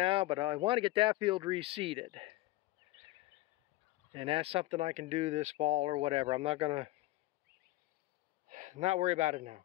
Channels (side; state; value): right; quieter; 18.6 dB